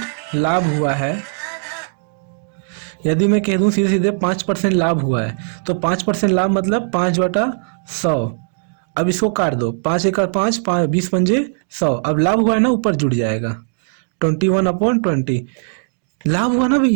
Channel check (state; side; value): silent; left; digital silence